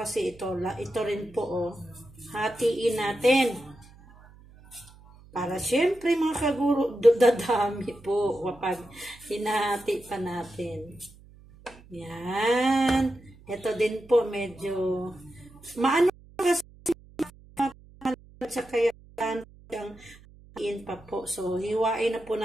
ito. Ito rin po, oh. Hatiin natin. Para syempre mga kaguro, dadami po kapag hinahati pa natin. Yan. Ito din po medyo maano kasi sa kaya hatiin pa po. So, hiwain na po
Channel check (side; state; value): right; noise; hum, 23 dB below the sound